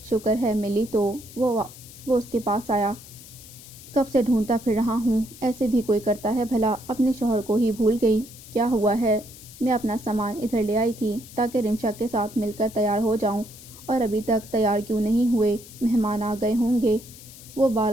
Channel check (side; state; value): left; noise; hiss, 18 dB below the sound